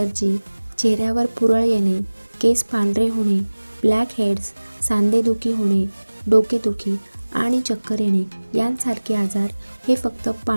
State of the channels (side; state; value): both; inverted; correlation -1.00